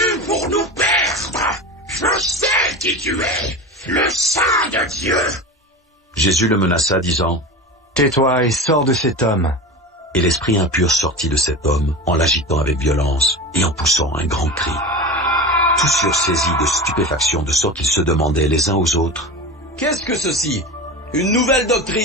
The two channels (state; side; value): normal; both; correlation 0.28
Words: pour nous perdre. Je sais qui tu es, le Saint de Dieu. » Jésus le menaça, disant, « Tais-toi et sors de cet homme. » Et l'esprit impur sortit de cet homme, en l'agitant avec violence, et en poussant un grand cri. Tous furent saisis de stupéfaction, de sorte qu'ils se demandaient les uns aux autres, « Qu'est-ce que ceci? Une nouvelle